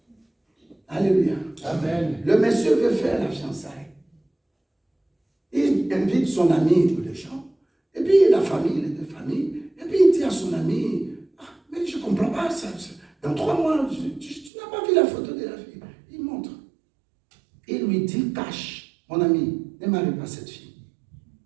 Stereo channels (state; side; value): drops out; left; at 14.5 s